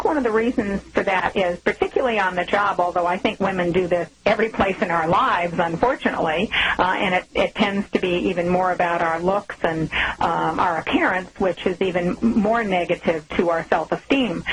one of the reasons for that is, particularly on the job, although I think women do this every place in our lives, unfortunately, and it tends to be even more about our looks and our appearance, which is even more negative to our self-esteem.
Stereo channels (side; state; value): both; identical; correlation 1.00